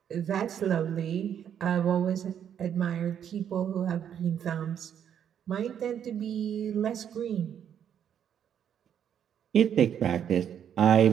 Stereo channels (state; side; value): quieter; left; 9.0 dB